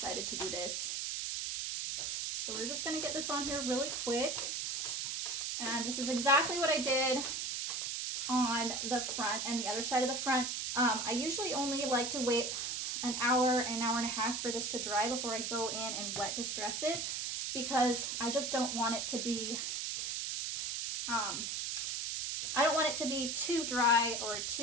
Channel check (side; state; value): right; noise; hiss, 2 dB below the sound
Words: to do this. So we're just gonna get this on here really quick. And this is exactly what I did on the front and the other side of the front. I usually only like to wait an hour and a half for this to dry before I go in and wet distress it, because I just don't want it to be, I don't want it to be too dry or